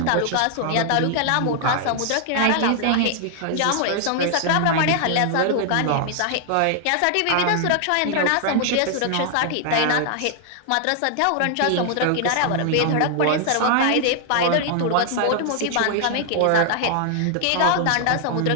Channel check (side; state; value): both; different; correlation 0.00